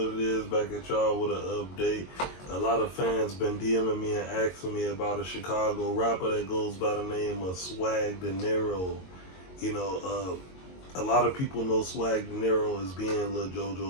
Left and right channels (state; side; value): late; right; 22 ms